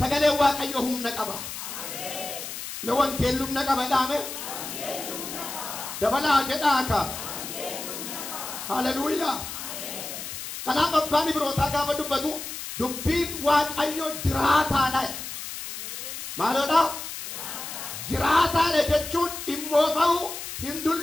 Waaqayyo humna qaba. Me wangeelli humna qaba dhaame. Dabalaa jedhaa ka. Haleluuyaa. Kanaaf abbaan Ibrootaa gaafa dubbatu dubbiin Waaqayyo jiraataadha. Maaloodha? Jiraataadha jechuun immoo ta'u hin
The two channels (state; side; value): noise; left; hiss, 8 dB below the sound